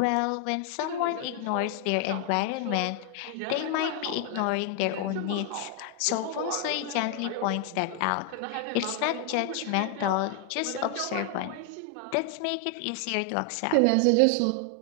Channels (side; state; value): both; different; correlation 0.00